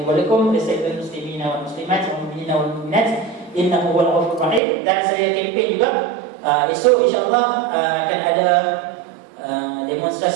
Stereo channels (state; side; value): drops out; left; at 4.6 s